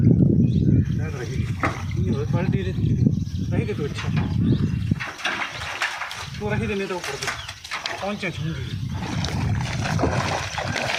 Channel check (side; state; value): both; identical; correlation 1.00